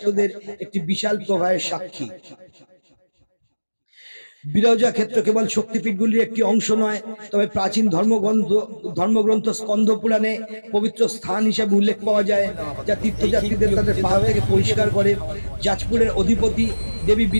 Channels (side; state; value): both; inverted; correlation -1.00